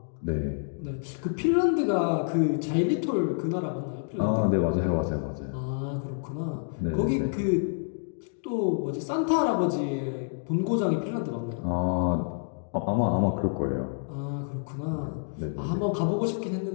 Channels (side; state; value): right; silent; digital silence